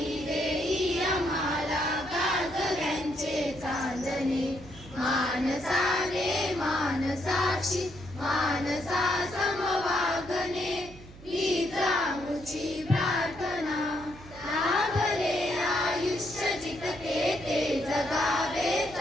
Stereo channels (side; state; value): right; noise; hum, 19 dB below the sound